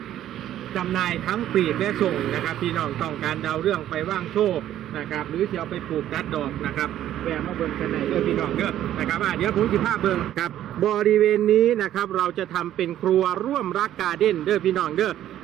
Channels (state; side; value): quieter; left; 12.0 dB